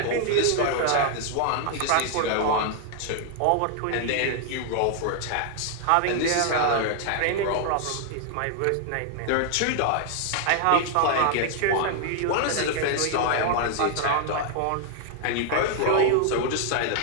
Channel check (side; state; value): both; different; correlation 0.00